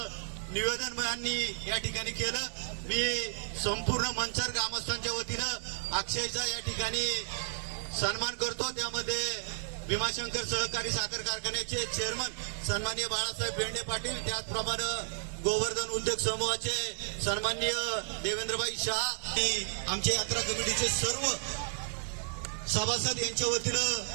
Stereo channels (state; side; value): silent; left; digital silence